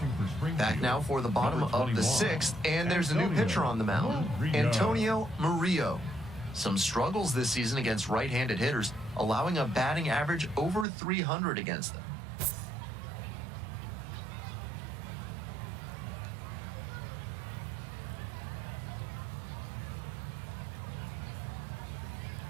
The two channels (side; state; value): left; drops out; at 10.9 s